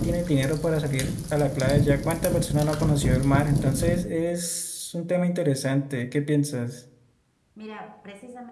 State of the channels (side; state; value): both; identical; correlation 1.00